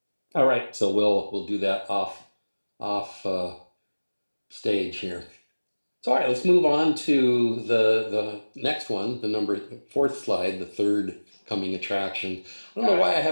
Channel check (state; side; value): inverted; both; correlation -1.00